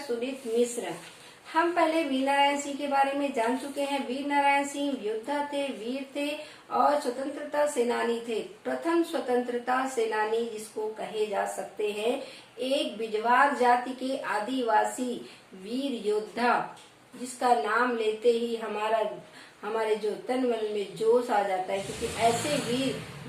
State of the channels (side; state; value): both; identical; correlation 1.00